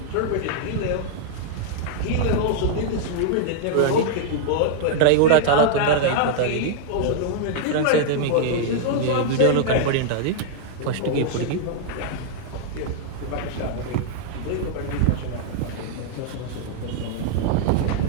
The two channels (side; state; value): both; different; correlation -0.01